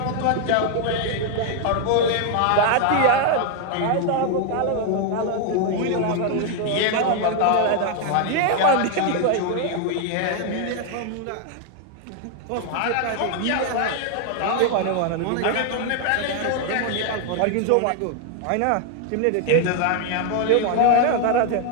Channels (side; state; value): both; different; correlation 0.00